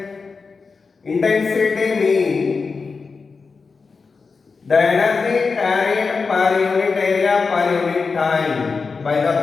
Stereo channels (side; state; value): right; quieter; 4.7 dB